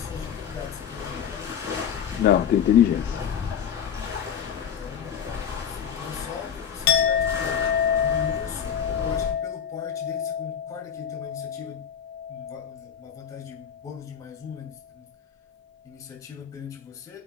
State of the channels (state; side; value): quieter; right; 8.4 dB